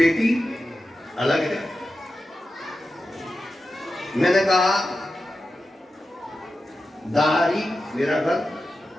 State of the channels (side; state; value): both; normal; correlation 0.92